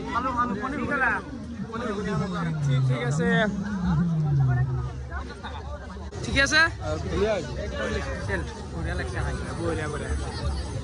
খালা ঠিক আছে ঠিক আছে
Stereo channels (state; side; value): identical; both; correlation 1.00